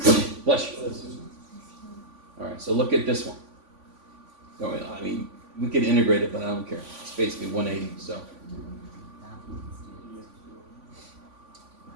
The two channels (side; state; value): left; late; 3.5 ms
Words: Bless you. Alright, so look at this one. Oh, I mean, we could integrate it, but I don't care. It's basically 180, so.